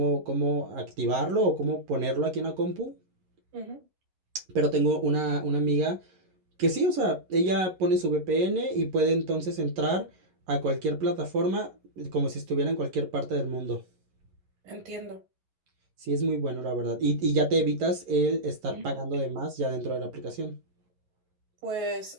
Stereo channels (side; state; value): left; late; 11 ms